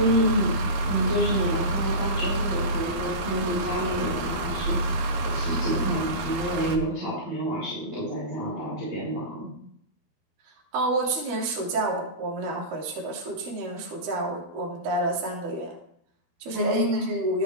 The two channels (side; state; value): left; late; 13 ms